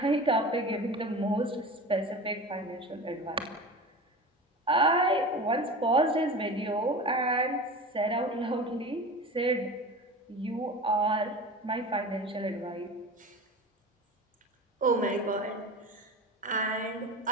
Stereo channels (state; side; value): normal; both; correlation 0.33